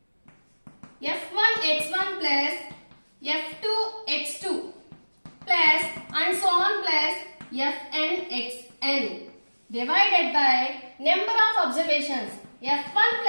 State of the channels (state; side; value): inverted; both; correlation -1.00